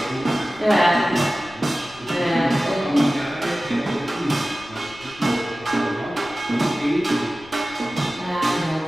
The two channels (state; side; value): noise; left; rumble, 23 dB below the sound